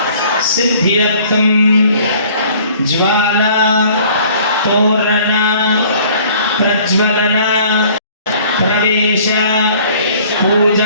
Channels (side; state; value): both; inverted; correlation -0.54